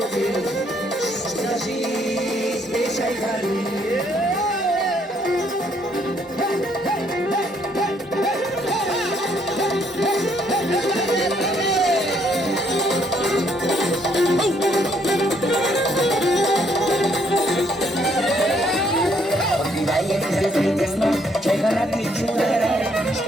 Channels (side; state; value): both; normal; correlation 0.69